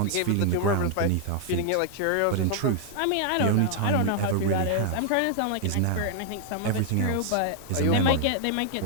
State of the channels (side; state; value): both; different; correlation 0.00